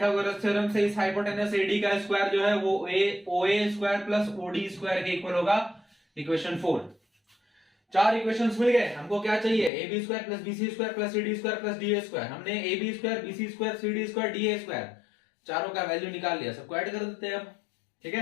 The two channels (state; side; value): drops out; right; at 9.7 s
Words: थ्योरम से इस हाइपोटेनस AD का स्क्वायर जो है वो OA square plus OD square के इक्वल होगा, इक्वेशन 4। चार इक्वेशंस मिल गए। हमको क्या चाहिए, AB square plus BC square plus CD square plus DA square. हमने AB square, BC square, CD square, DA square चारों का वैल्यू निकाल लिया, सबको ऐड कर देते हैं अब। ठीक